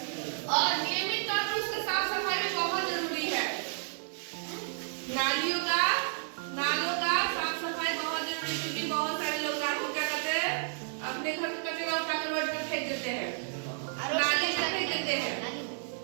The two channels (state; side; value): silent; left; digital silence